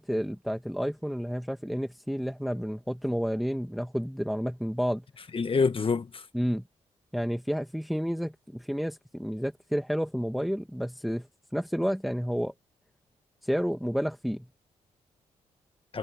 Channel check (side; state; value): both; normal; correlation 0.95